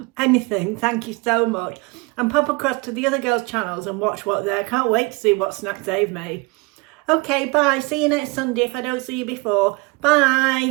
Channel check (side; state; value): left; quieter; 26.7 dB